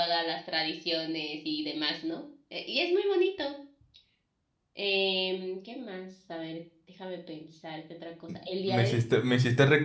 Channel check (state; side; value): identical; both; correlation 1.00